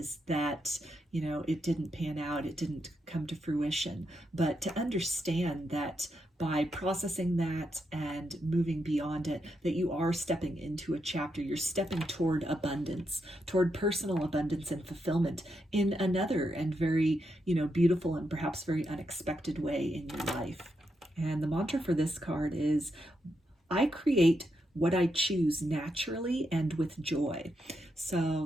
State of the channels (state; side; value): normal; both; correlation 0.83